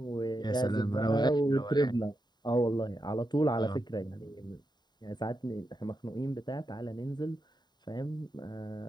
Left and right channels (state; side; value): late; right; 0.21 ms